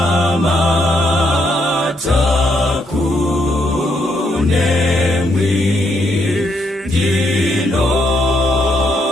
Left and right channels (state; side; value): normal; both; correlation 0.76